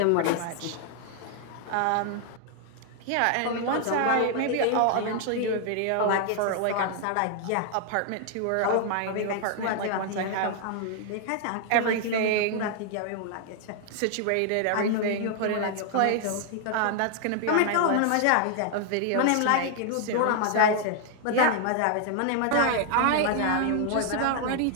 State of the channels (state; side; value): different; both; correlation 0.00